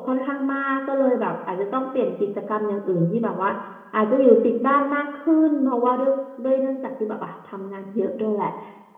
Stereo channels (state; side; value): identical; both; correlation 1.00